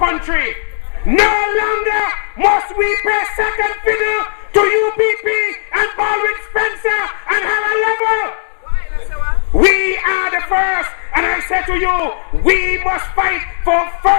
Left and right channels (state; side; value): silent; right; digital silence